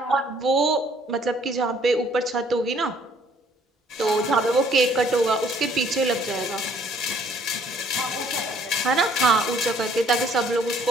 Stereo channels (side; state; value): both; normal; correlation 0.61